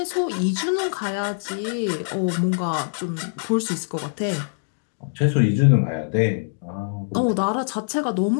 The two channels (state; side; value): silent; right; digital silence